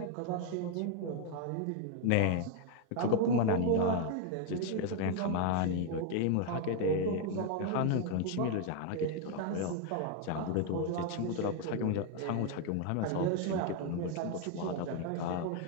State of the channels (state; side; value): different; both; correlation 0.01